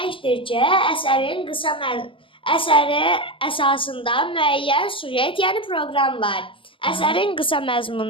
ki, əsəri əsasında müəyyən sujet, yəni proqram var. Əsərin qısa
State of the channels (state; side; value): late; right; 0.25 ms